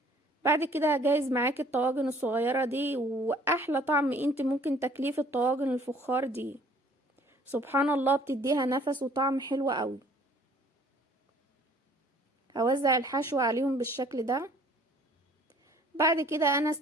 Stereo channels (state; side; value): normal; both; correlation 0.56